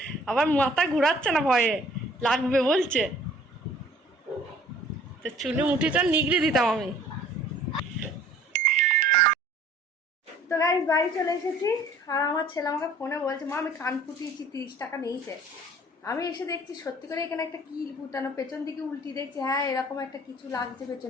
আবার মাথা ঘুরাচ্ছে না, ভয়ে লাগবে বলছে। তো চুলে মুঠিটা নিগড়ে দিতাম আমি। তো গাইস, বাড়ি চলে এসেছি। আর আমার ছেলে আমাকে ফোনে বলছে, মা আমি কান ফুটিয়েছি, 30 টাকা নিয়েছে। আমি এসে দেখছি সত্যি করে এখানে একটা কিল ফুটানো, পেছন দিকে উল্টি দেখছি, হ্যাঁ এরকম একটা কিছু লাগছে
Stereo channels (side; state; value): both; normal; correlation 0.53